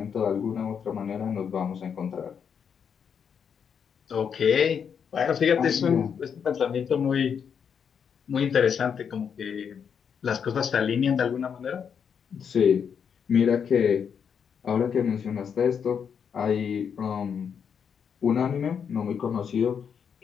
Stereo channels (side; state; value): right; quieter; 7.2 dB